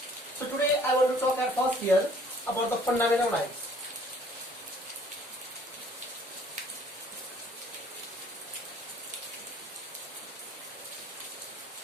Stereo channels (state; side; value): normal; both; correlation 0.57